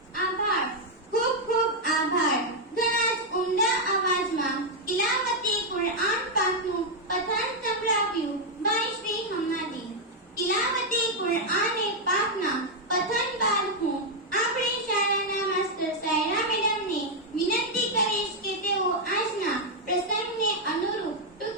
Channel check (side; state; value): both; normal; correlation -0.01